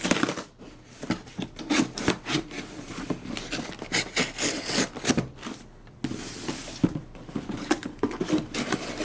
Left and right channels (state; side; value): identical; both; correlation 1.00